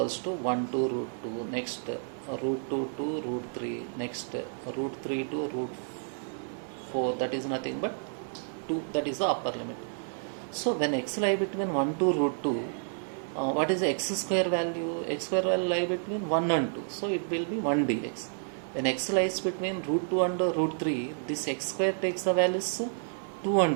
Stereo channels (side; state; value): left; silent; digital silence